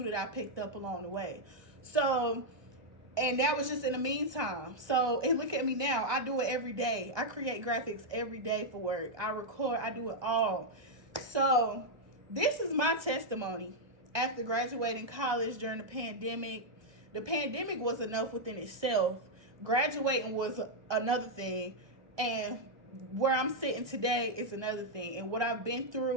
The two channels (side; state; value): left; late; 1.2 ms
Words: that I picked up along the way. So And that was just in the meantime. So, and look at me now. I do it every day. I create graphics every day for work. I record. I do it all. So, this is my testimony after graduating college during the pandemic. The pandemic was enough within itself. Graduating was another thing. And where I'm sitting today is another thing. And what I've been